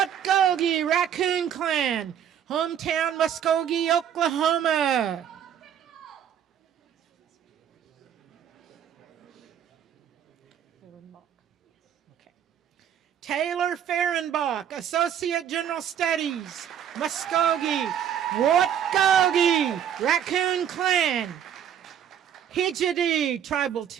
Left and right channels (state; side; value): quieter; left; 9.3 dB